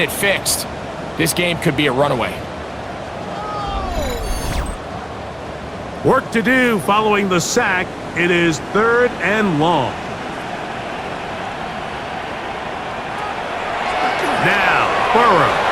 fixed, this game could be a runaway. Work to do following the sack. It is 3rd and long. Now, Burrow.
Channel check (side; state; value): both; identical; correlation 1.00